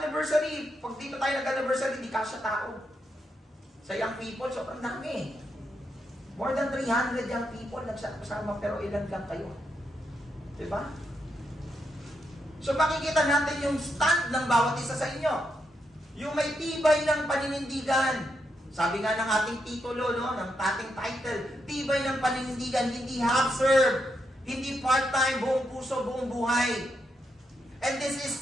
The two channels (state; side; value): normal; both; correlation 0.82